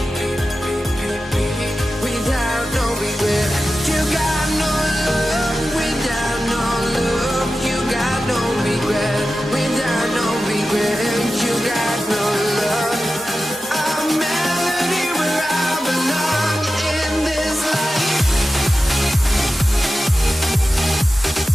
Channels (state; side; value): normal; both; correlation 0.93